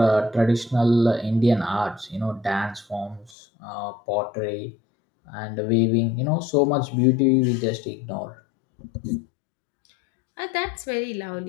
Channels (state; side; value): drops out; right; at 3.3 s